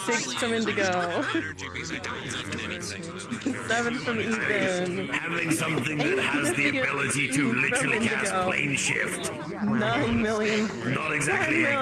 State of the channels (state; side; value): identical; both; correlation 1.00